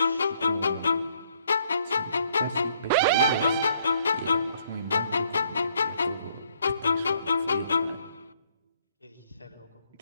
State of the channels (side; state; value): both; inverted; correlation -0.67